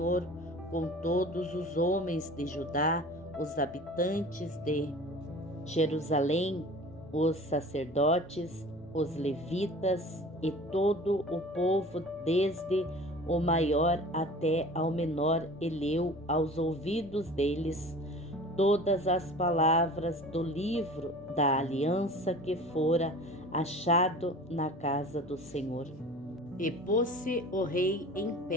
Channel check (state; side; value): normal; both; correlation 0.41